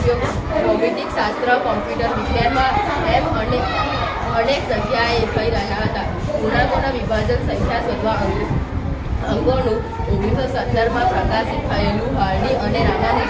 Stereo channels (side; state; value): both; identical; correlation 1.00